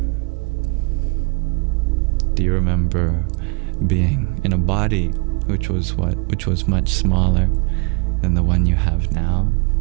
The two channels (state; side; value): quieter; left; 31.6 dB